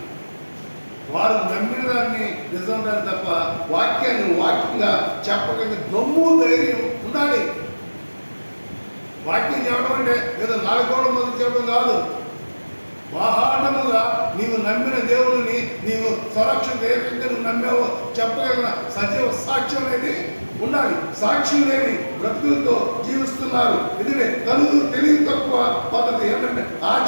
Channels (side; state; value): both; inverted; correlation -1.00